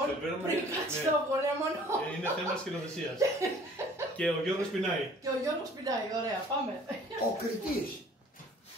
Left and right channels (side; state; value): both; normal; correlation 0.52